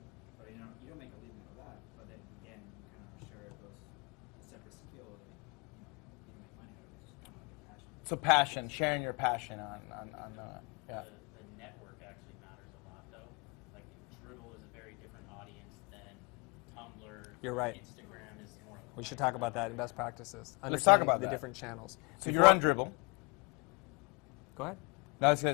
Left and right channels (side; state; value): right; quieter; 30.0 dB